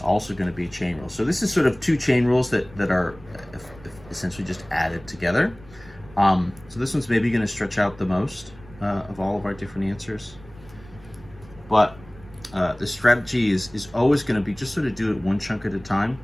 going to be a chain rule. So this is sort of two chain rules that are essentially just added together. So this one's maybe going to stretch out the most of all of our different answers. But the strategy is always going to be just sort of do it one chunk at a time,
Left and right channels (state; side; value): noise; right; rumble, 21 dB below the sound